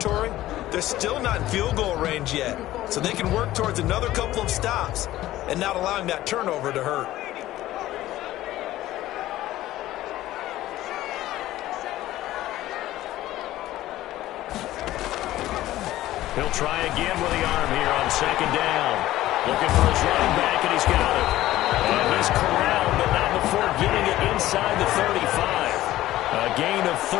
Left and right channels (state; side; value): quieter; right; 15.1 dB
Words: they're still not in field goal range yet. So they can work towards another couple of stops and not allowing that turnover to hurt. He'll try again with the arm here on second down. Looking for his running back, and he's got it. And he's corralled, but not before getting it inside the 35. A gain of